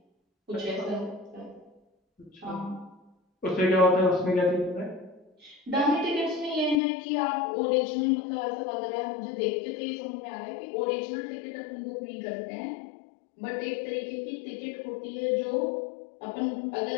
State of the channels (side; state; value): right; drops out; at 6.8 s